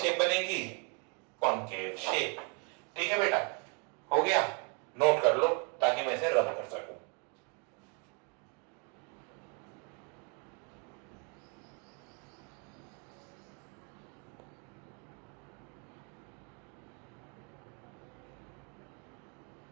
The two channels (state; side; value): quieter; left; 35.9 dB